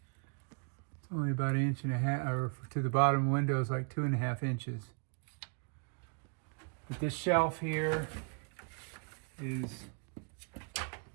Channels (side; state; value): left; quieter; 37.6 dB